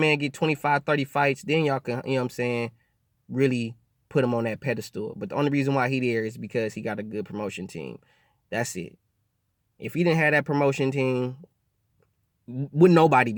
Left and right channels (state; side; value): identical; both; correlation 1.00